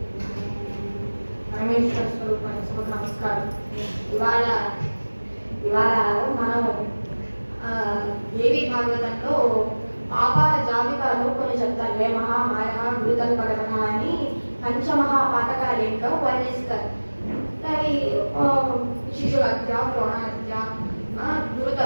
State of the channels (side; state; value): both; inverted; correlation -1.00